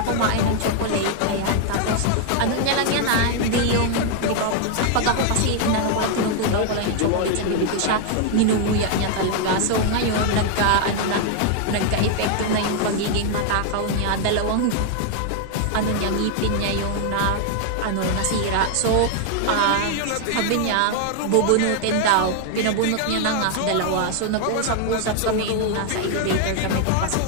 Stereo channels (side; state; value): both; different; correlation 0.00